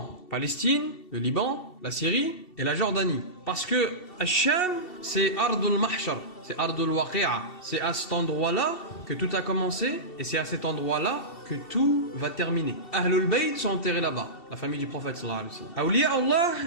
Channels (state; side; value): late; right; 2.7 ms